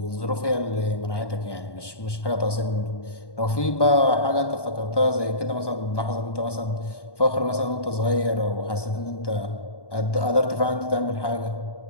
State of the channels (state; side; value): late; right; 1.1 ms